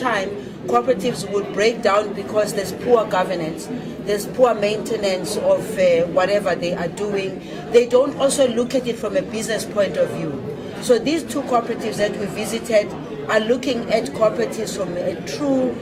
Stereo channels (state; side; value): identical; both; correlation 1.00